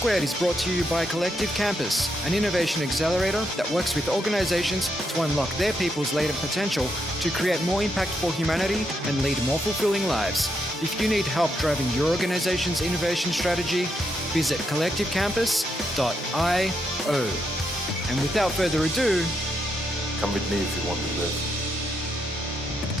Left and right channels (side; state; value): both; normal; correlation 0.80